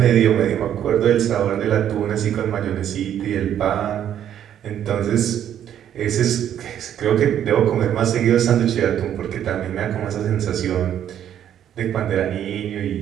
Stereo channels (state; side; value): quieter; left; 10.2 dB